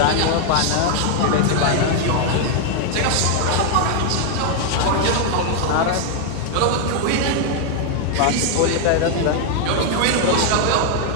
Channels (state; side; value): different; both; correlation 0.00